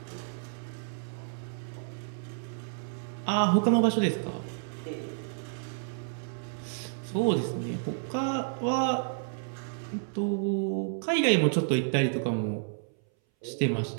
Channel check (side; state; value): left; silent; 58 dB below the other